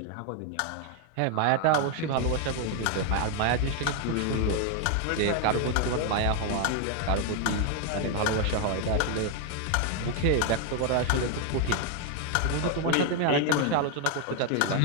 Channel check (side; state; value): both; different; correlation 0.01